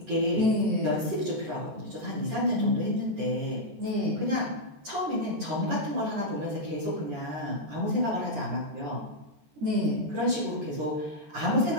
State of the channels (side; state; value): left; late; 14 ms